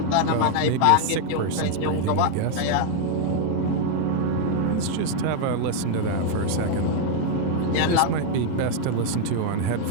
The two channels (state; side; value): different; both; correlation 0.00